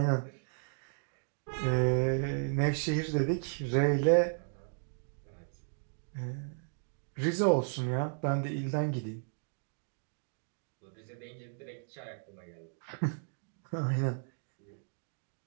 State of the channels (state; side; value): silent; left; digital silence